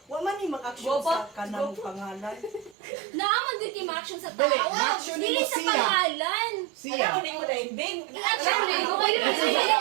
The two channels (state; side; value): drops out; left; at 2.8 s